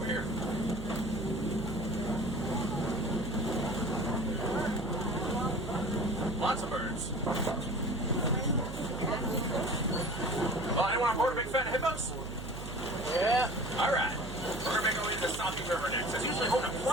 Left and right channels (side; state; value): right; noise; hum, 10 dB below the sound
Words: here. Lots of birds. Oh, anyone on board a big fan of hippos? Yeah. Alright. We're going to make our way to the Sabi River next. There's usually home to